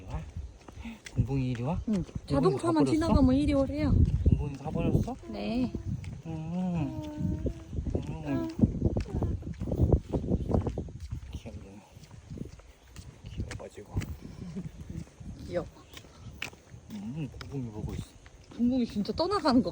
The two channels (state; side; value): identical; both; correlation 1.00